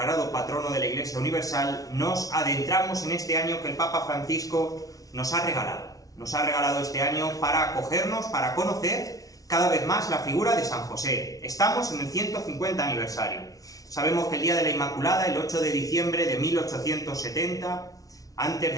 patrono de la Iglesia Universal, nos adentramos en este año que el Papa Francisco nos ha regalado. Nos ha regalado este año para acogernos, para conocer cada vez más la figura de San José. Estamos en el 150 aniversario. Sabemos que el día de la Inmaculada, el 8 de diciembre de 1870, antes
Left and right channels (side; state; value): right; late; 0.18 ms